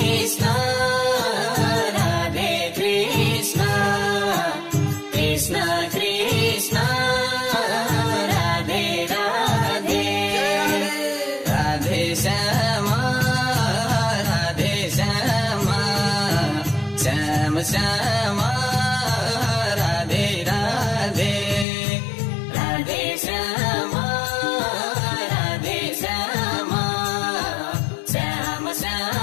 Radhe Krishna Krishna Krishna Radhe Radhe Radhe Shyama Radhe Shyama Shyam Shyama Radhe Radhe Radhe Shyama Radhe Shyama Shyam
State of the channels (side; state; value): right; drops out; at 21.7 s